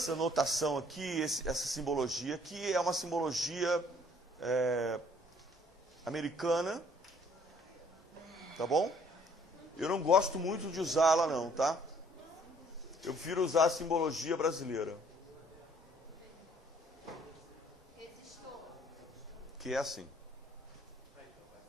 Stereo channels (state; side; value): normal; both; correlation 0.60